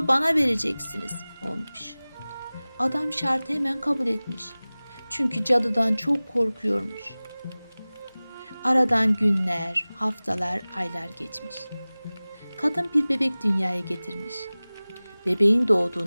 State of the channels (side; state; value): both; inverted; correlation -0.99